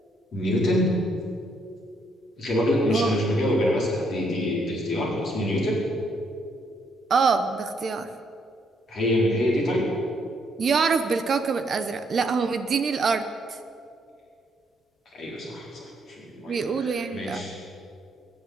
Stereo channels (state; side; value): normal; both; correlation 0.72